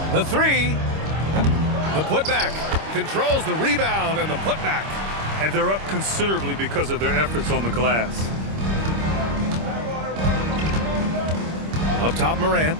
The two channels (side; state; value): left; late; 26 ms